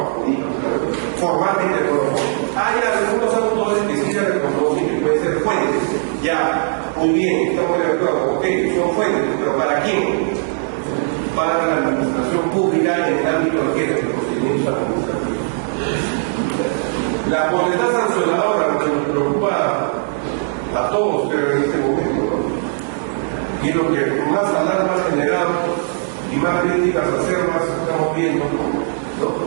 jurídicas, formalmente no lo son. Hay algunos autores que sí se reconocen que pueden ser fuentes. Ya, muy bien, estamos de acuerdo, ok, son fuentes, pero ¿para quién? Para la administración pública en el ámbito de los procedimientos administrativos. La potestad sancionadora, lo que nos preocupa a todos, pero en este momento, ¿no? Y lo que más alarma ha generado y más críticas acervas estamos viendo, ¿no?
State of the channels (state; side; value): silent; left; digital silence